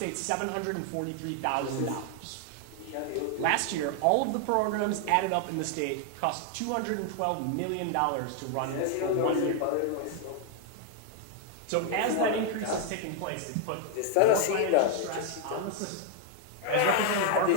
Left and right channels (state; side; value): different; both; correlation 0.00